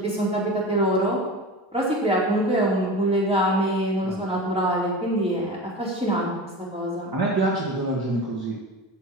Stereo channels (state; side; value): normal; both; correlation 0.30